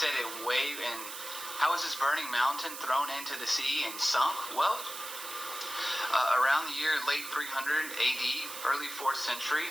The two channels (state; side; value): noise; right; hiss, 9 dB below the sound